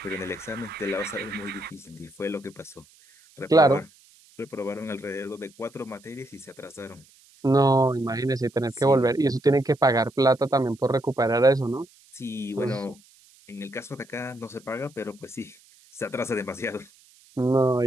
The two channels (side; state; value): right; noise; hiss, 28 dB below the sound